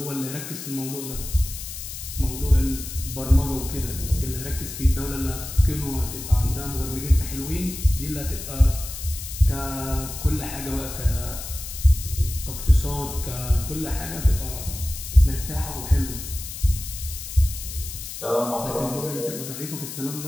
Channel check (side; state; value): left; noise; hiss, 9 dB below the sound